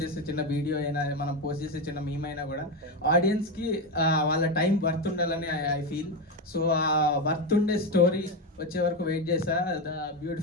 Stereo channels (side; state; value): both; normal; correlation 0.13